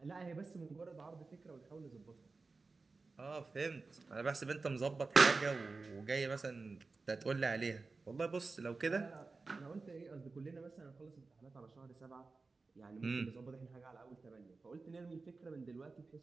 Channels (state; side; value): quieter; left; 3.9 dB